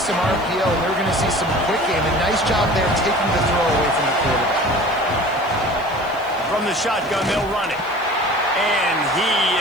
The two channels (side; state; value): left; noise; hiss, 26 dB below the sound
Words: some RPO, and they were going to see some quick game. And nice job there taking the throw away from the quarterback. From the shotgun, they'll run it. And he